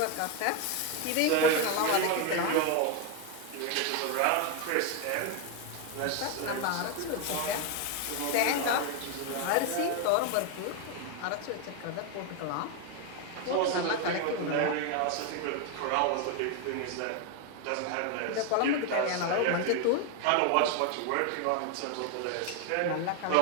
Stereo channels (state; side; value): different; both; correlation 0.01